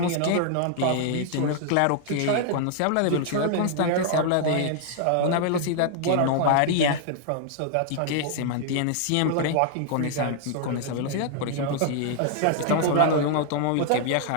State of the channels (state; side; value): different; both; correlation 0.00